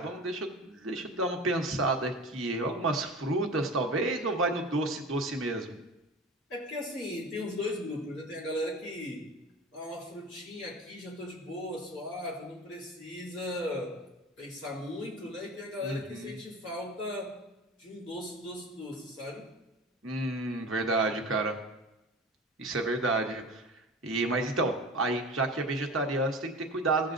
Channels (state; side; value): normal; both; correlation 0.35